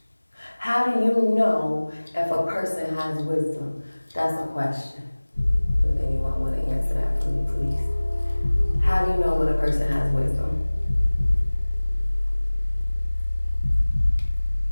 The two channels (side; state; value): both; inverted; correlation -1.00